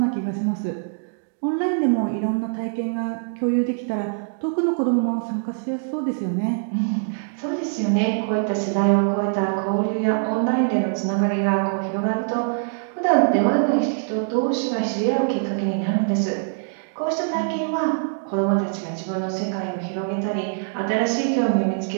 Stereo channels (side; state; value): left; silent; digital silence